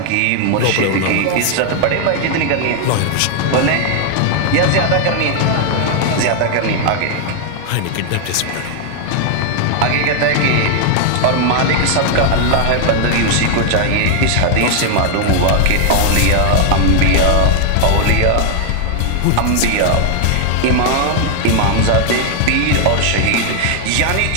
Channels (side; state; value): both; different; correlation 0.00